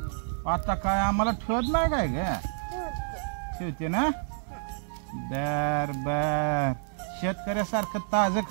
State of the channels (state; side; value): silent; left; digital silence